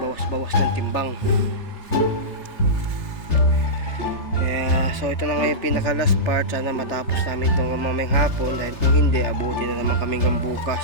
ng timbang. Kaya, so ito na nga yung pinaka last part. Sana matapos namin itong mamayang hapon. Dahil kung hindi, abuti na naman kami hanggang bukas,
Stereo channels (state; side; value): late; right; 3.3 ms